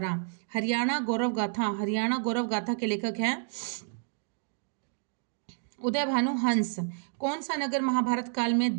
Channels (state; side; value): silent; left; digital silence